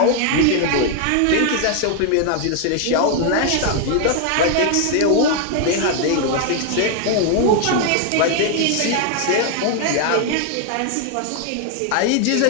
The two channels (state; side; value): different; both; correlation 0.00